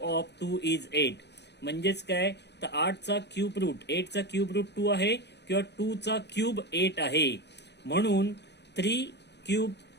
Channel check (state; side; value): late; right; 0.50 ms